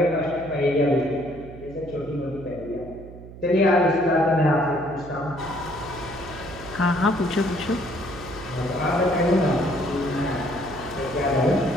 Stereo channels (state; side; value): noise; right; hum, 16 dB below the sound